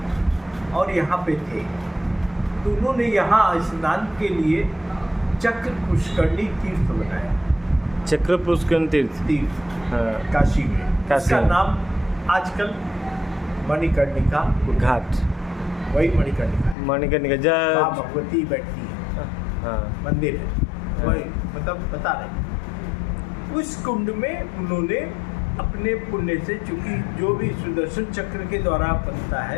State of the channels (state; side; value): drops out; right; at 16.8 s